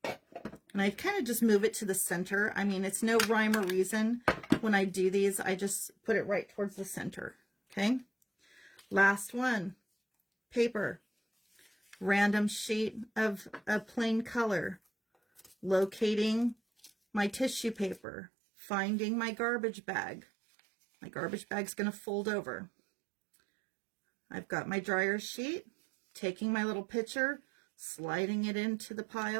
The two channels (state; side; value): drops out; left; at 18.0 s